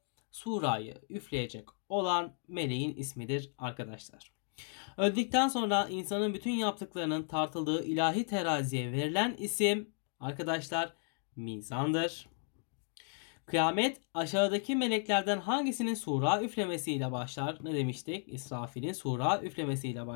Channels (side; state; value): right; silent; 55 dB below the other